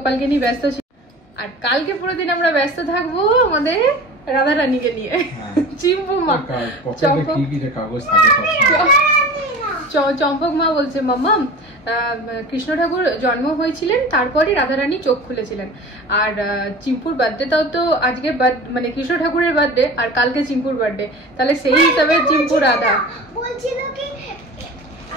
নিয়ে ব্যস্ত ছিলাম, আর কালকে পুরো দিন আমরা ব্যস্ত থাকবো আমাদের রাধা রানীকে নিয়ে। চিম্পু মা, চম্পক মা বলছে মাম্মা কৃষ্ণ ঠাকুর জন্ম হয়েছিলেন, তারপরে রাধারানী চোখ খুলেছিলেন। আর চিম্পুর বার্থডেটাও তো আজকে, মানে কৃষ্ণ ঠাকুরের বার্থডে আর কালকে চিম্পুর বার্থডে, তাহলে সেই হিসাবে চিম্পু রাধা বলছিল কি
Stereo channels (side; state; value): right; late; 1.2 ms